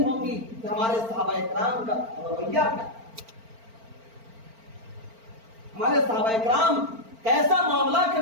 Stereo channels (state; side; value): late; left; 4.4 ms